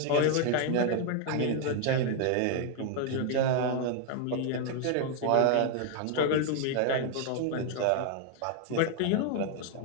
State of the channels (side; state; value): both; different; correlation 0.00